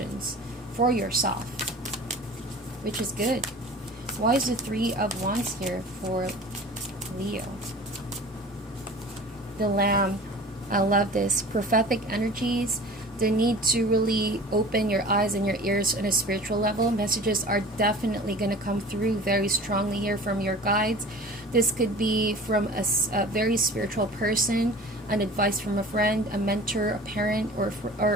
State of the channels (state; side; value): normal; both; correlation 0.42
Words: for yourself, which is good. Why is the 3 of Wands here for Leo? The Lamb. I love this. Prophetic energies. The need to really open your eyes and your ears on a spiritual level. Messages are definitely going to come through very strongly here from your guides. This could be from a very spiritual person, an advice from a friend, a mentor, a parent,